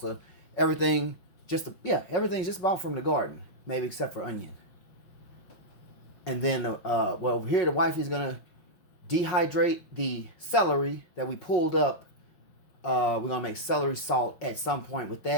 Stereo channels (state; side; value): late; right; 5.5 ms